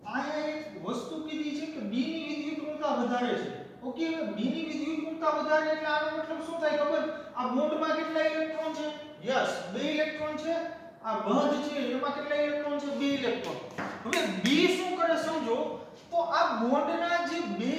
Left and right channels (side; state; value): both; identical; correlation 1.00